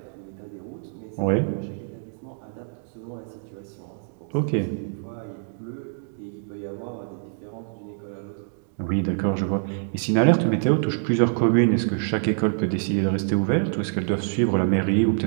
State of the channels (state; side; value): silent; left; digital silence